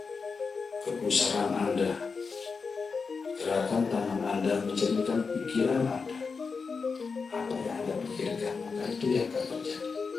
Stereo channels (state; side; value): quieter; right; 4.9 dB